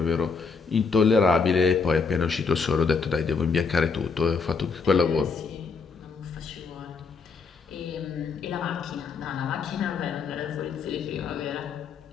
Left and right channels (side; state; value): right; quieter; 5.0 dB